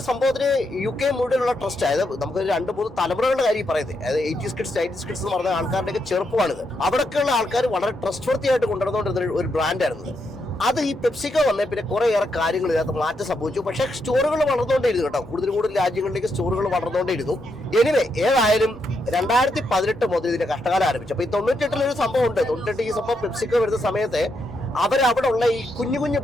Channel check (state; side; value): normal; both; correlation 0.81